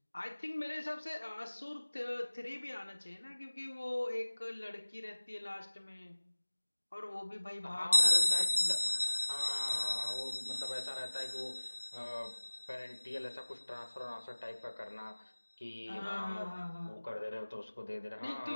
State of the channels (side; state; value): both; inverted; correlation -1.00